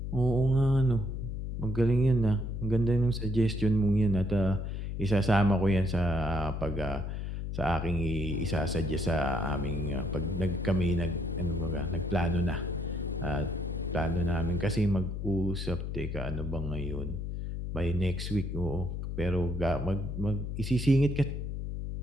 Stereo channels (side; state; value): left; noise; hum, 4 dB below the sound